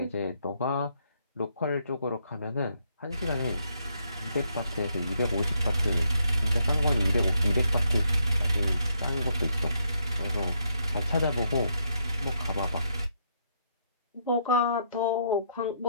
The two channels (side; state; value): both; inverted; correlation -0.75